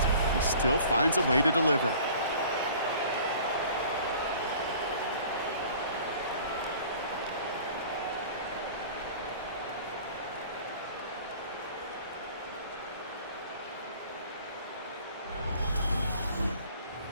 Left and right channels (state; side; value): inverted; both; correlation -0.48